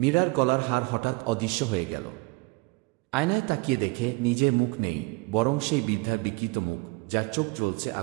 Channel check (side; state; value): left; quieter; 26.2 dB